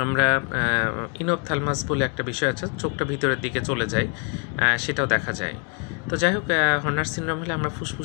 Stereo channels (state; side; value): quieter; right; 38.3 dB